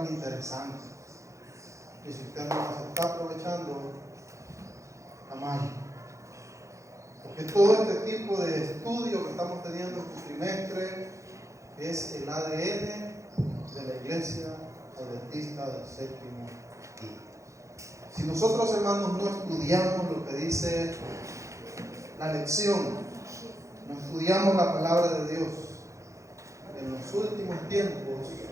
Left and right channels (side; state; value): left; late; 0.15 ms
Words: interesantes. Y si usted no las está aprovechando, está mal. Porque todo este tipo de estudio que estamos teniendo este trimestre es el ADN de la Iglesia Adventista del Séptimo Día. Si nosotros, hermanos, no estudiamos lo que dice la lección, no estudiamos la palabra de Dios, en los últimos tiempos,